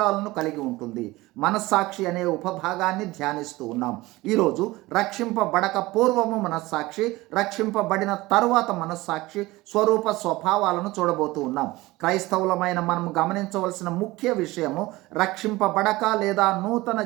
కలిగి ఉంటుంది. మనస్సాక్షి అనే ఉపభాగాన్ని ధ్యానిస్తూ ఉన్నాం. ఈరోజు రక్షింపబడక పూర్వము మనస్సాక్షి, రక్షింపబడిన తరువాత మనస్సాక్షి స్వరూప స్వభావాలను చూడబోతూ ఉన్నాం. క్రైస్తవులమైన మనం గమనించవలసిన ముఖ్య విషయము, రక్షింపబడక లేదా నూతన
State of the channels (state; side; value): quieter; left; 19.8 dB